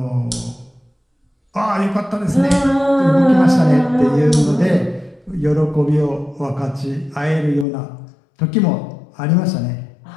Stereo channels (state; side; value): drops out; right; at 7.7 s